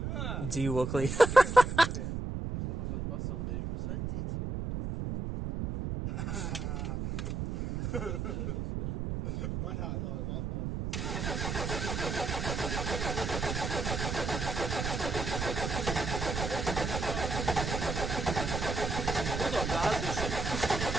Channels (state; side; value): noise; right; rumble, 3 dB below the sound